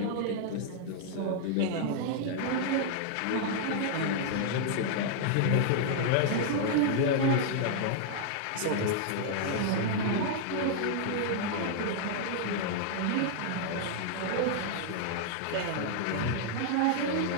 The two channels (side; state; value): both; different; correlation 0.00